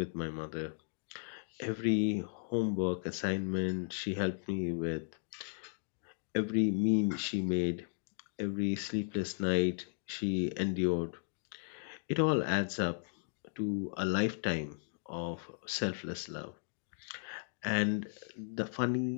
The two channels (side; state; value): right; silent; digital silence